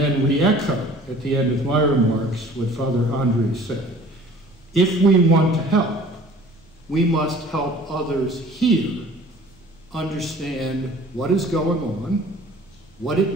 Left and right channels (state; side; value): noise; right; rumble, 30 dB below the sound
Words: re-echo at the end of my remarks what Father Andrey said. If we want to help, we must help others here understand what is going on, what it